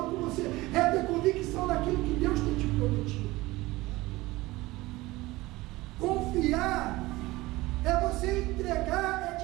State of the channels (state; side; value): quieter; left; 19.7 dB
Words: com você. É ter convicção naquilo que Deus tem te prometido. Confiar é você entregar,